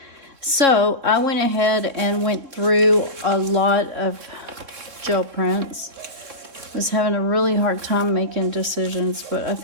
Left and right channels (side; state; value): left; late; 3.7 ms